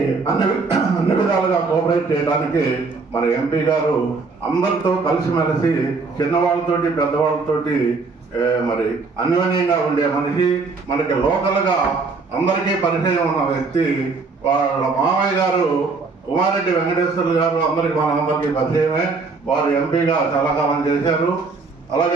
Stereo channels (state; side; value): quieter; left; 4.2 dB